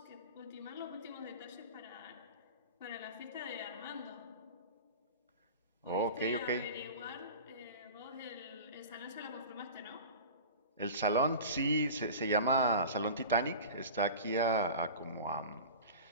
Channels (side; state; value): both; inverted; correlation -0.35